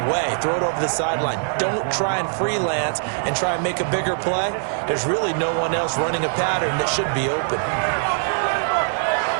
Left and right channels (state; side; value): silent; left; digital silence